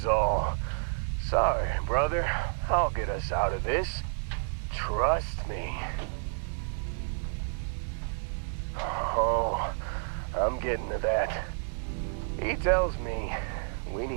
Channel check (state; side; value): silent; left; 58 dB below the other